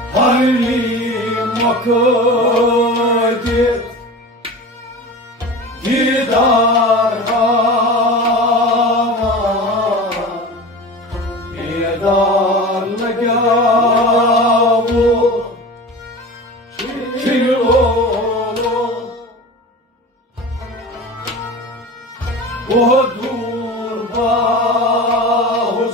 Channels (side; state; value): both; normal; correlation 0.33